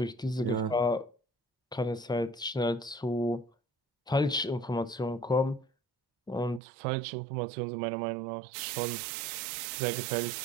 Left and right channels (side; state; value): left; drops out; at 6.6 s